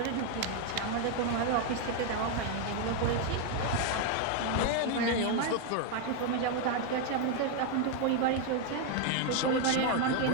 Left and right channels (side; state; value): both; different; correlation 0.01